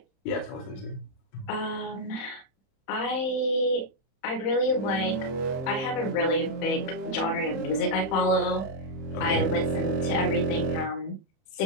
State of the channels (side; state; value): right; late; 31 ms